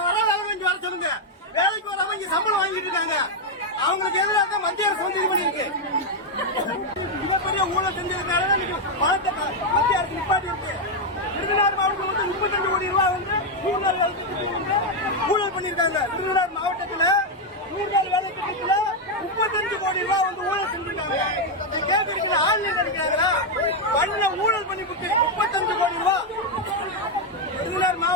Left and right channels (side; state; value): both; normal; correlation 0.02